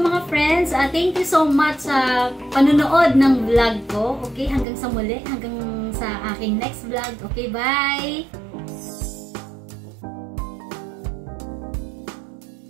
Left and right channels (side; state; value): left; drops out; at 4.7 s